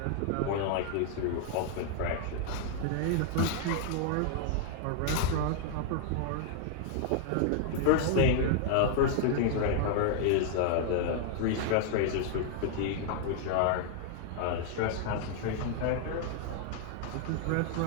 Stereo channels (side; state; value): both; different; correlation 0.00